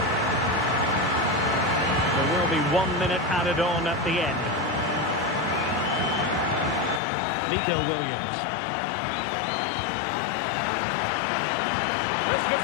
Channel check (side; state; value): right; drops out; at 7.0 s